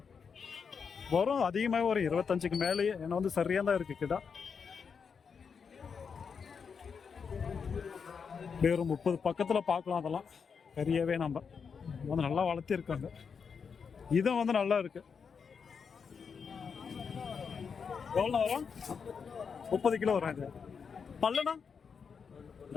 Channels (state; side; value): quieter; right; 6.1 dB